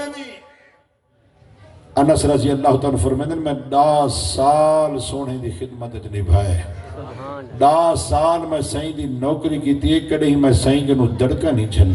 دی انس رضی اللہ تعالیٰ فرمائن میں 10 سال سونے دی خدمت نبھائے 10 سال میں سائیں دی نوکری کی تھی ایک کڑے ہی میں سائیں کے نو دڑکا نہیں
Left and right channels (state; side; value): identical; both; correlation 1.00